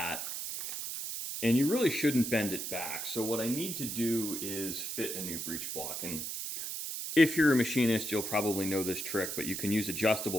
and you really shouldn't bend it back. So what I need to do is fit a new breech block. And if you're a machinist, you'll probably know this trick, but you can use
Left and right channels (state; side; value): noise; right; hiss, 5 dB below the sound